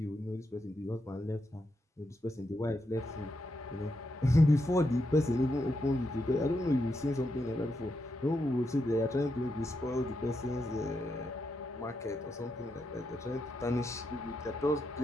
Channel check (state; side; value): normal; both; correlation 0.83